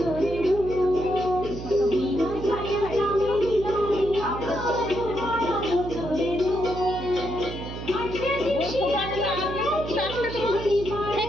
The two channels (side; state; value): right; noise; hum, 9 dB below the sound